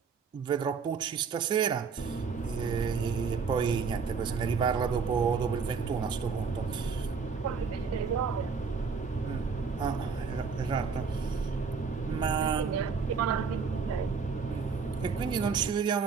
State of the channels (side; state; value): left; quieter; 5.5 dB